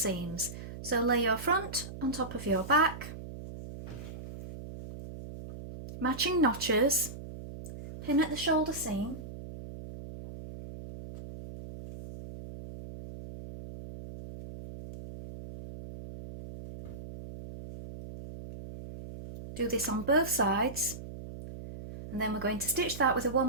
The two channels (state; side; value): noise; right; hum, 11 dB below the sound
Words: So lay your front on top of your back, matching notches, pin at the shoulder seam, do this on both sides, and then we're going to stitch that with a